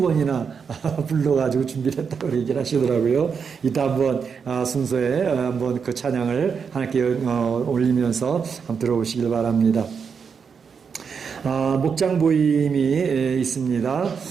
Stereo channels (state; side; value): quieter; left; 6.2 dB